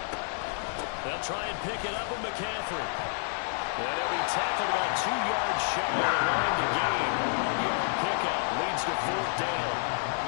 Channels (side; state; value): right; silent; 57 dB below the other